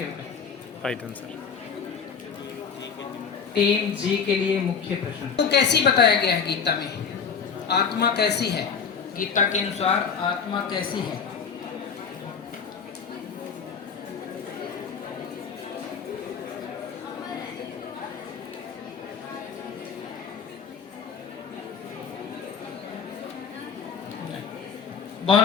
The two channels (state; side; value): quieter; right; 6.4 dB